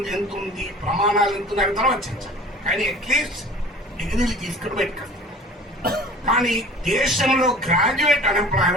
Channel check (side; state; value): both; normal; correlation 0.44